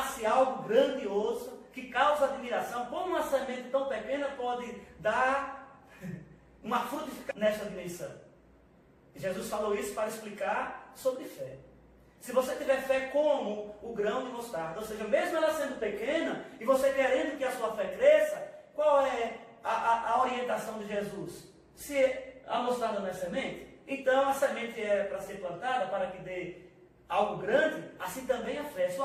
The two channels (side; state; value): both; identical; correlation 1.00